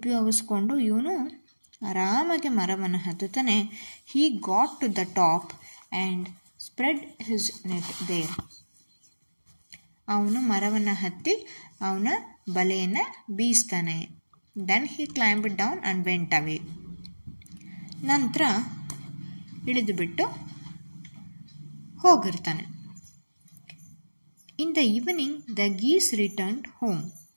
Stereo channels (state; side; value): inverted; both; correlation -1.00